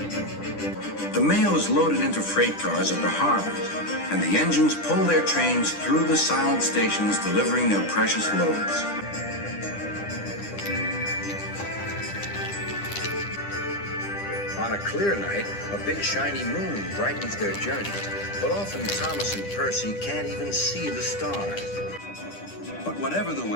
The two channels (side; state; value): right; late; 10 ms